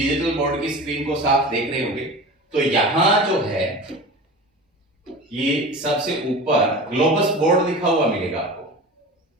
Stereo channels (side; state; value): both; normal; correlation 0.34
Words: बोर्ड की स्क्रीन को साफ देख रहे होंगे। तो यहां जो है ये सबसे ऊपर ग्लोबस बोर्ड लिखा हुआ मिलेगा आपको।